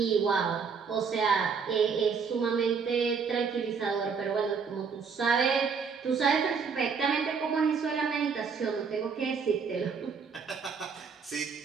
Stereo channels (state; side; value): quieter; left; 5.8 dB